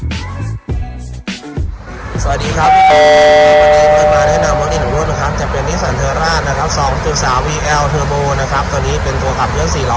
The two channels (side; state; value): both; identical; correlation 1.00